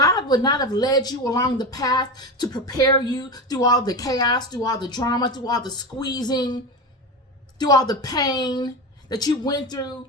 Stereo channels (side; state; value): both; normal; correlation 0.22